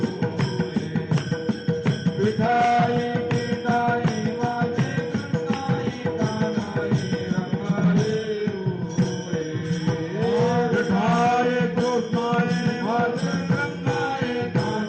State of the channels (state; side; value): identical; both; correlation 1.00